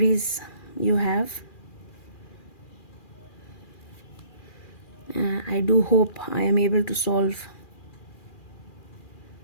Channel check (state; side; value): late; right; 2.4 ms